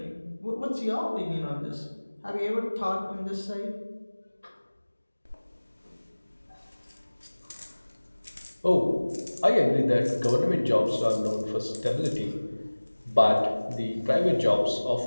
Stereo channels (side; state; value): both; inverted; correlation -1.00